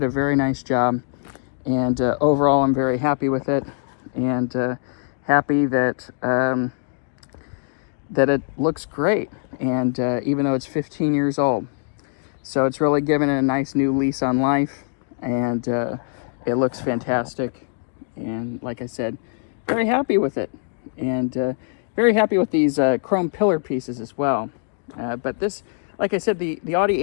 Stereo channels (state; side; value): silent; right; 64 dB below the other